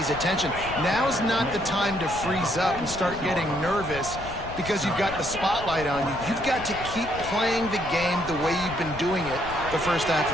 attention. Now's not the time to freeze up and start getting nervous because you've got the spotlight on you. You've got to keep playing the game the way you've been doing it the first half of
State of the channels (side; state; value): left; noise; rumble, 12 dB below the sound